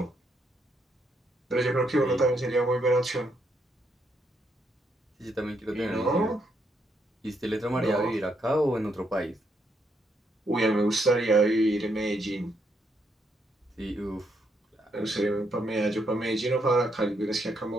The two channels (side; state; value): both; normal; correlation 0.76